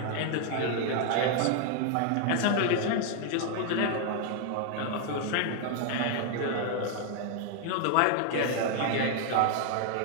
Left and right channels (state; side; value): different; both; correlation 0.00